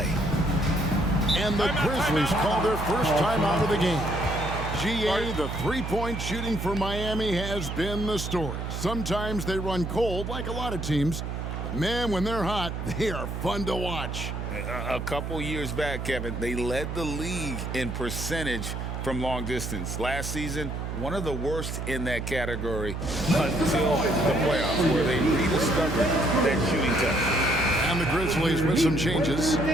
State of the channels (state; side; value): noise; right; hum, 5 dB below the sound